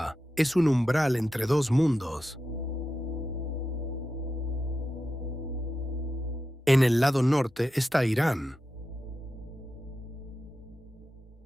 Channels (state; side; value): normal; both; correlation 0.90